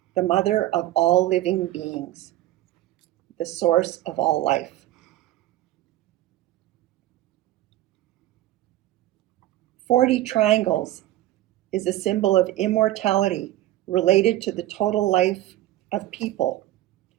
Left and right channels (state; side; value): quieter; left; 15.1 dB